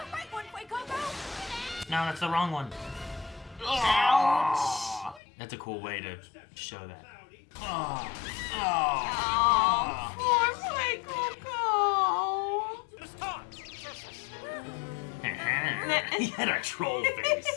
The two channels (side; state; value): right; drops out; at 5.2 s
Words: right one, wait, Coco! No, that's the wrong one. Ouch. That's a cool way to show that. Oh. Oh, poor Coco. Start. He had a troll